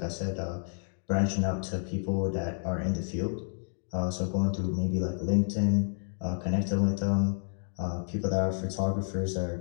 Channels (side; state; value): right; silent; digital silence